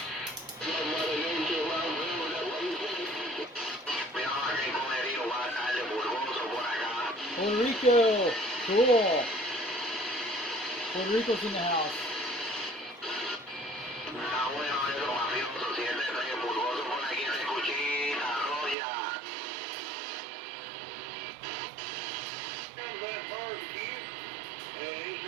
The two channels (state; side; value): drops out; left; at 18.8 s